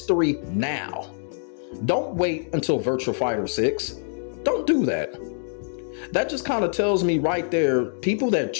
now. Don't wait until Virtua Fighter 6. Don't do that. That just kind of tells me right there, people that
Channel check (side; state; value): right; silent; 59 dB below the other